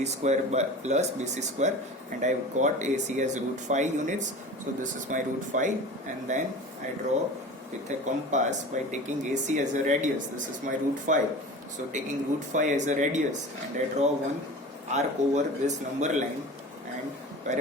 square plus BC square, and I got AC as root 5 units. So this is my root 5, and then I draw with a compass by taking AC as a radius. This is my root 5. So taking root 5 as a radius, and I draw one arc over this number line. and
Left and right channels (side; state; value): both; normal; correlation 0.36